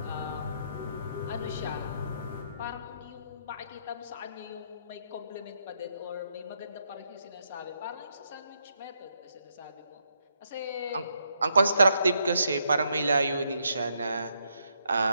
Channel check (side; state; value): both; inverted; correlation -0.77